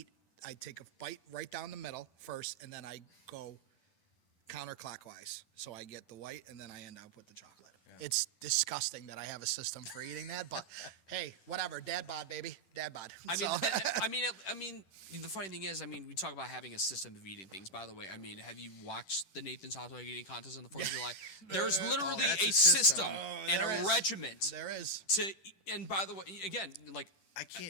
take a bite right down the middle first, and then I go counterclockwise. So I get the white and then I end up with the chocolate. Yeah. It's disgusting that I have a system for eating that, but hey, whatever. Dad bod, baby. Dad bod. I mean, the funny thing is, we talk about having a system of eating things. By the way, have you watched the Nathan's Hot Dog Eating Contest on the 4th of July? There's literally a system and a regiment. There is. And by the way, again, I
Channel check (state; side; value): late; right; 10 ms